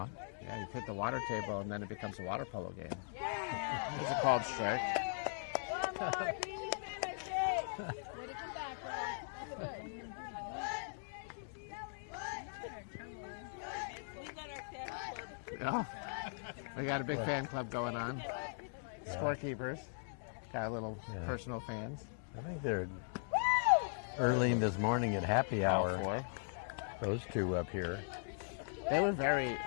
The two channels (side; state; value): right; silent; digital silence